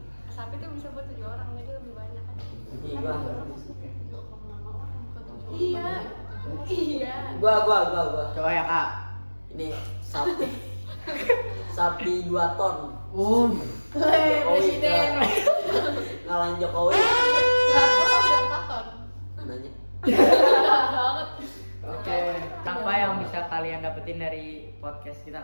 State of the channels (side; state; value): both; inverted; correlation -1.00